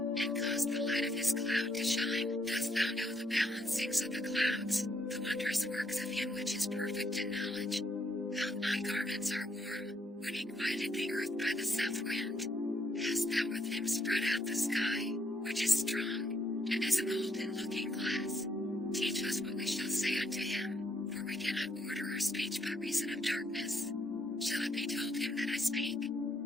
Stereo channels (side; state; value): both; normal; correlation 0.72